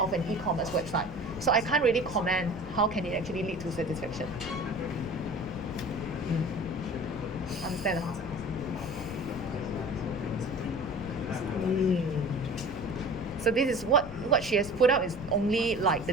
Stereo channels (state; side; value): noise; left; rumble, 13 dB below the sound